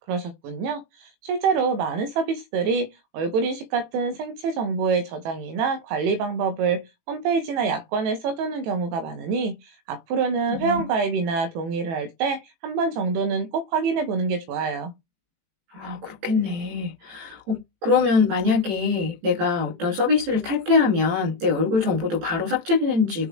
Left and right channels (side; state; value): left; late; 18 ms